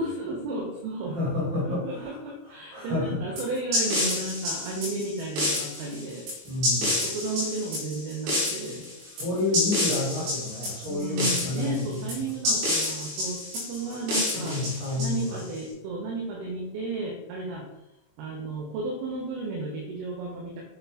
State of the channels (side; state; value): left; late; 24 ms